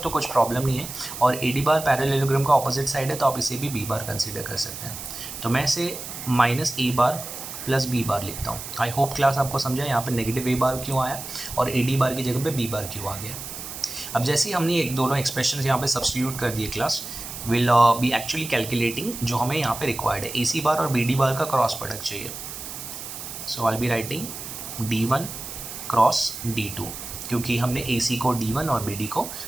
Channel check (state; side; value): noise; right; hiss, 9 dB below the sound